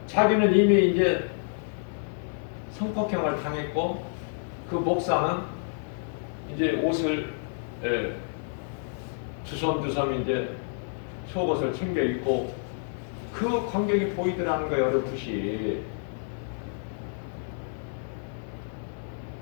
자기는 이미 이제 성폭행을 당했고 그 목사는 이제 옷을 두섬두섬 이제 속옷을 챙겨 입고 그 광경이 보이더라는 거예요. 어렴풋이.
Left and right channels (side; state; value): right; silent; 58 dB below the other